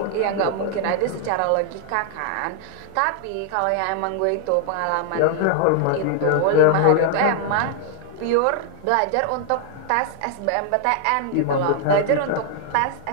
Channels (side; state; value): both; different; correlation 0.00